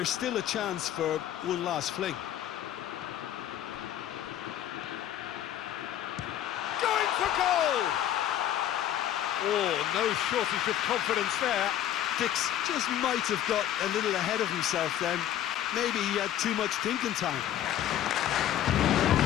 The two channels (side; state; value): right; quieter; 11.5 dB